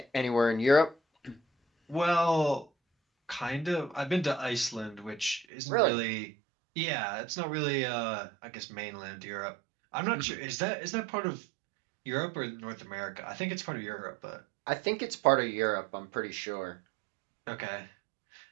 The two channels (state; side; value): drops out; left; at 5.5 s